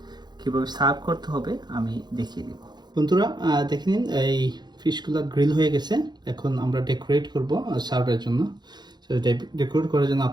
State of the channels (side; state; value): left; late; 0.21 ms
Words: কীভাবে সার্ভ করতে হবে আমি দেখিয়ে দেব। বন্ধুরা দেখে নিন, এই ফিশগুলো গ্রিল হয়ে গেছে। এখন আমরা ডেকোরেট করব সার্ভের জন্য। সো ডেকোরেট করার জন্য